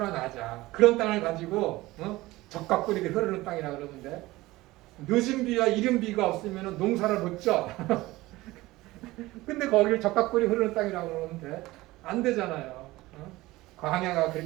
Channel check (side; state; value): left; quieter; 18.9 dB